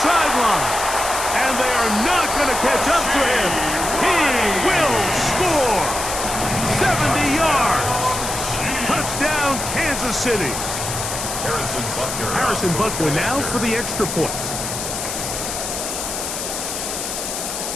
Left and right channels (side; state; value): left; noise; hiss, 5 dB below the sound